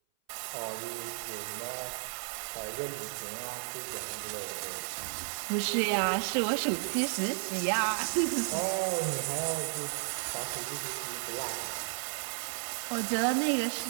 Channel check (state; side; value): silent; left; 56 dB below the other